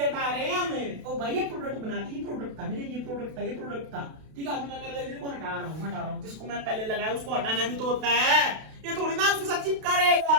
हटा रहे हैं हमें, ओ भाई ये प्रोडक्ट बनाती, ये प्रोडक्ट था मेरे, ये प्रोडक्ट था, ठीक है। अभी मैं कार्बन ऑक्सीजन को हटा रहा हूँ, जिसको मैं पहले लगाया उसको हटाना भी तो होता है, ये थोड़ी ना उसके साथ चिपका रहेगा,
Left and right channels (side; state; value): left; late; 32 ms